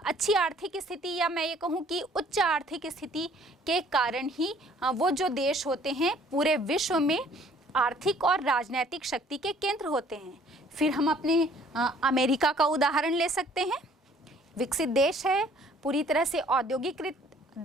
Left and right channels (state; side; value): normal; both; correlation 0.57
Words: आर्थिक स्थिति, या मैं ये कहूँ कि उच्च आर्थिक स्थिति के कारण ही वो जो देश होते हैं पूरे विश्व में आर्थिक और राजनीतिक शक्ति के केंद्र होते हैं। फिर हम अपने अमेरिका का उदाहरण ले सकते हैं। विकसित देश है, पूरी तरह से औद्योगिकृत